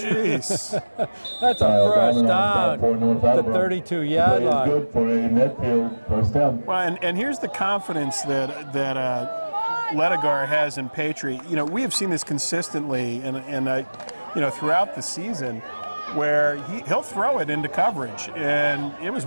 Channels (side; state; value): both; inverted; correlation -1.00